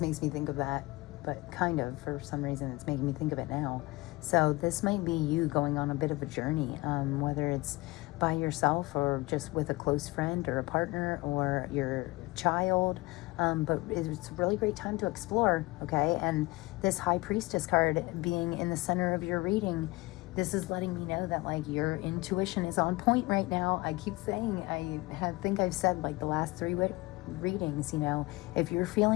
me think of that, but kind of, for some reason, it's making me think of it now. So this might be you going on a bit of a journey, whether it's by yourself or just with a close friend or a partner or your child. But it's a really great time to explore, okay? And this High Priestess card being in the center of your reading, this is letting me know that like your intuition is on point right now. I keep saying, I think I've said like the last 3 readings, you know, if you're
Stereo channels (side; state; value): right; quieter; 22.1 dB